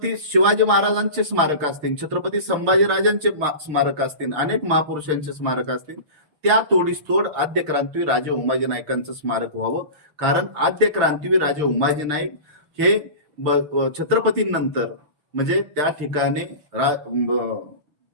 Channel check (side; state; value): left; late; 6.6 ms